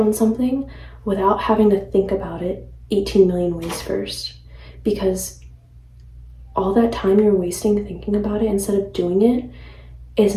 something without having to think about it 18 million ways first. Because all that time you're wasting thinking about it instead of doing it is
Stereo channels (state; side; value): identical; both; correlation 1.00